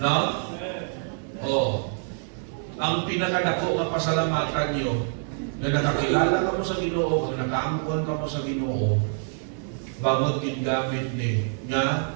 No? Oh. Ang pinakadako nga pasalamatan niyo, na nakakilala ka mo sa Ginoo, na nakaangkon ka mo sa Ginoo, bangod gingamit ni nga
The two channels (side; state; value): left; silent; 61 dB below the other